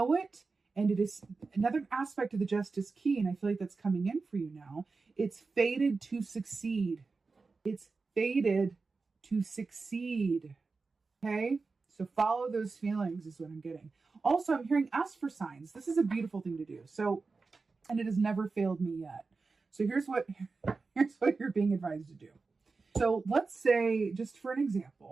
it. And it is another aspect of the justice key, and I feel like that's coming in for you now. It's fated to succeed. It's fated to succeed. Okay? So follow those feelings is what I'm getting. Also, I'm hearing ask for signs. This is a beautiful thing to do. So, and it has never failed me yet. So here's what you're being advised to do. So let's say, just for an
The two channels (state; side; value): quieter; left; 4.2 dB